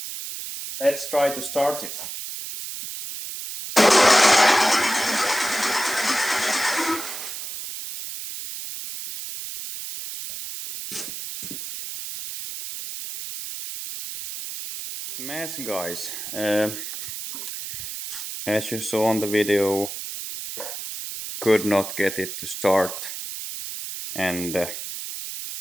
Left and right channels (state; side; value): noise; right; hiss, 8 dB below the sound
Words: let's try to start it. It's a mess, guys. As you saw on the video, could not get it to start, and